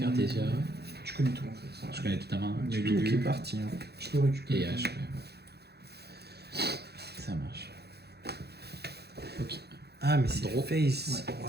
Tu connais tout en fait. Je connais toute ta main. Ouais, Du tout Tout qui est Lulu parti. Hein. Je peux récupérer. et H. Ça marche. Ok. Ah, mais c'est Draw. face. Ouais,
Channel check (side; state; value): left; late; 0.48 ms